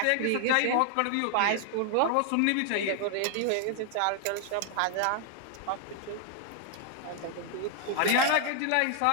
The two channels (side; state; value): both; different; correlation 0.00